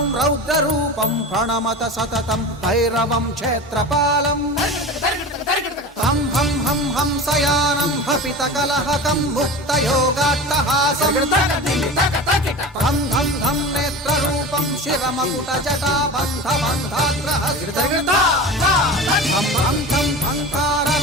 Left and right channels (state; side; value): normal; both; correlation 0.32